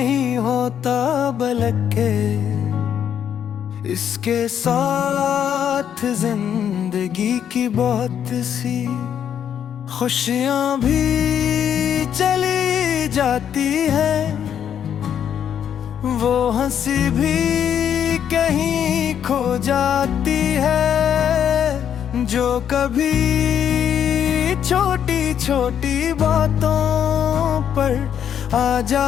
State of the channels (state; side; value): quieter; right; 9.0 dB